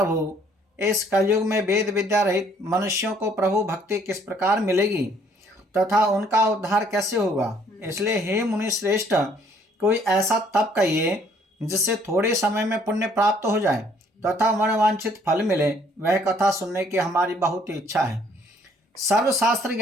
इस कलयुग में वेद विद्या रहित मनुष्यों को प्रभु भक्ति किस प्रकार मिलेगी तथा उनका उद्धार कैसे होगा। इसलिए हे मुनि श्रेष्ठ, कोई ऐसा तप कहिए जिससे थोड़े समय में पुण्य प्राप्त हो जाए तथा मनवांछित फल मिले। वह कथा सुनने की हमारी बहुत इच्छा है। सर्वशास्त्र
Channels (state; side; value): normal; both; correlation 0.62